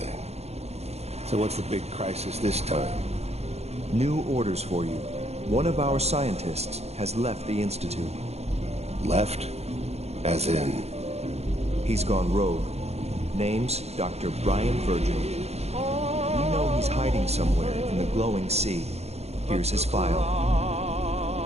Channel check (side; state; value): left; late; 0.31 ms